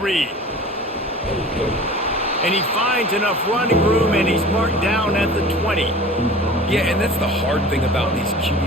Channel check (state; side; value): normal; both; correlation 0.41